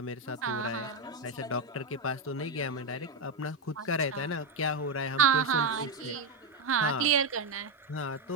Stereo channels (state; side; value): quieter; left; 3.1 dB